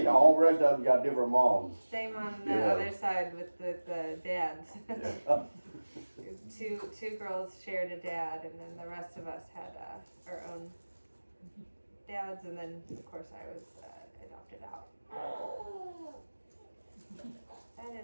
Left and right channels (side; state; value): both; inverted; correlation -1.00